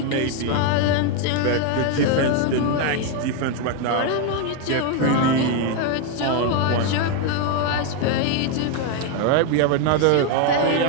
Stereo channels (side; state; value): both; different; correlation 0.01